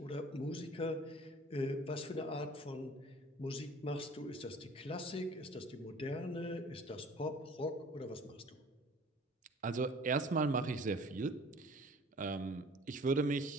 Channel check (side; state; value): both; normal; correlation 0.49